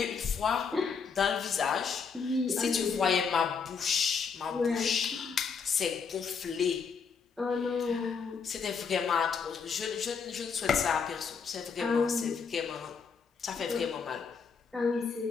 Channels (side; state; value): right; quieter; 5.8 dB